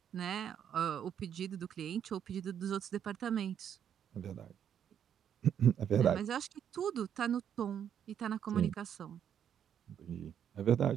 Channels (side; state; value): left; quieter; 9.0 dB